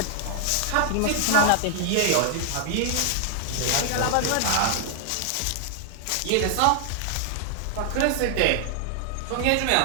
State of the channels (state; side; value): different; both; correlation -0.01